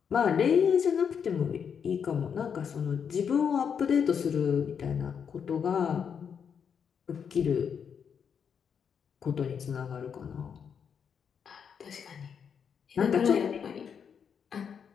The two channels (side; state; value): right; quieter; 7.2 dB